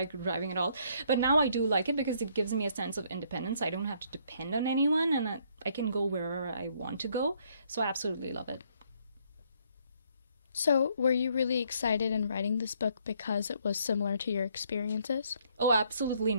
driving at all. But now I do like it, because it gives me a sense of independence. I don't have to depend on anyone, and I can go wherever I want to go. So I absolutely love it. So, were you really excited in writing this book because it was similar to your experiences? Oh, absolutely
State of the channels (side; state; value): both; inverted; correlation -0.67